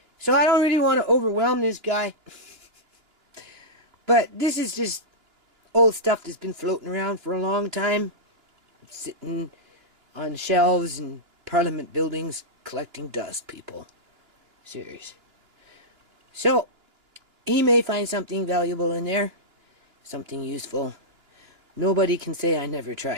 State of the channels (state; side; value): late; left; 2.9 ms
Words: So I don't really want to overwhelm this guy. But this is just old stuff that's been floating around for a long time, sitting on shelves in Parliament buildings, collecting dust, people. Serious. So, he may find something valuable in there, something useful. Nobody can say I never